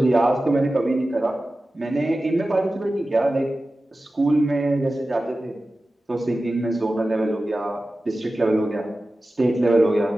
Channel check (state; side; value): normal; both; correlation 0.95